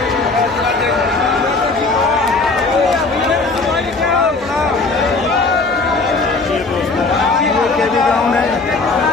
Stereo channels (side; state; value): right; quieter; 3.7 dB